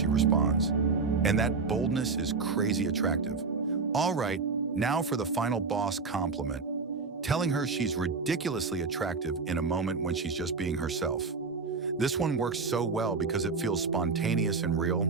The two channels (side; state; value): left; quieter; 4.5 dB